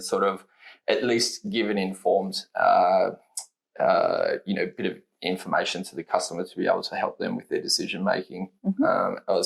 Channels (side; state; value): both; identical; correlation 1.00